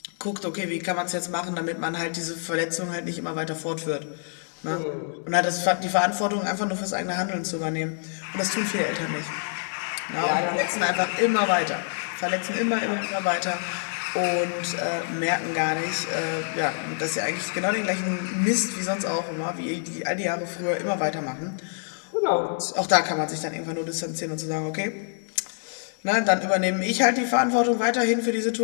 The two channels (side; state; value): right; silent; digital silence